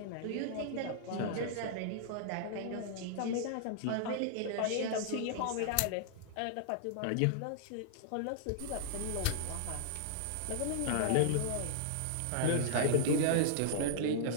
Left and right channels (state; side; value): different; both; correlation -0.01